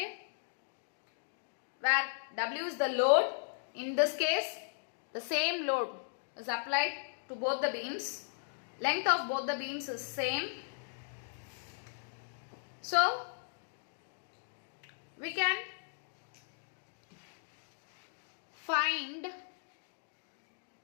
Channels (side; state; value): right; silent; digital silence